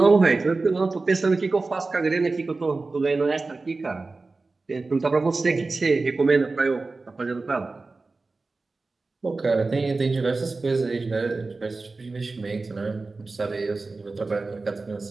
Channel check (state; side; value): quieter; left; 3.7 dB